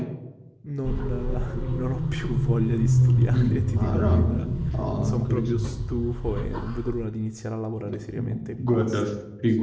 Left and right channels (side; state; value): both; identical; correlation 1.00